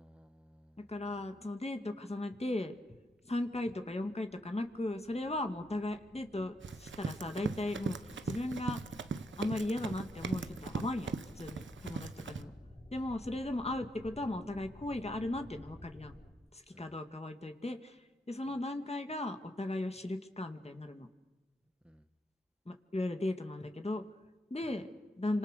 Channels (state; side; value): normal; both; correlation 0.79